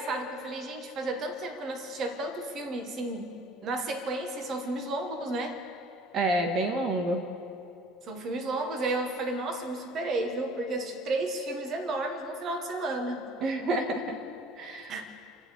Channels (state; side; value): normal; both; correlation 0.50